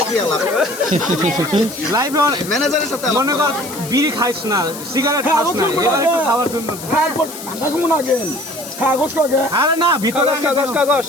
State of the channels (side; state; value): left; noise; hiss, 12 dB below the sound